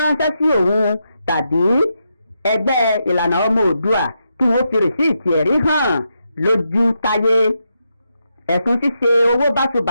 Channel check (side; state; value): both; inverted; correlation -0.84